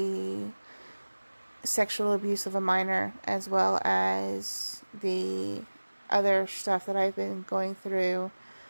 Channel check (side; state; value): both; inverted; correlation -1.00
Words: sexual abuse of a minor, as well as the other stuff that I've been going through,